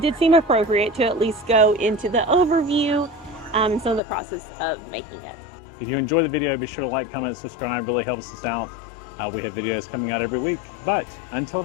did seem appropriate to at least go into the overview and some of the process of making it. If you enjoy the video, be sure to like, comment, subscribe. Really helps us out. We have videos coming out every week. But until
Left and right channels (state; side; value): drops out; right; at 4.0 s